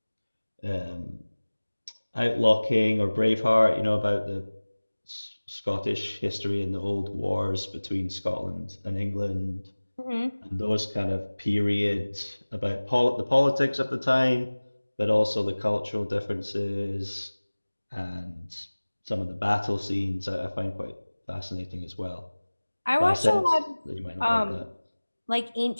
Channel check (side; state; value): both; inverted; correlation -1.00